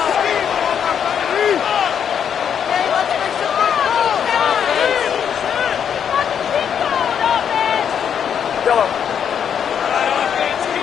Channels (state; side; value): quieter; right; 8.1 dB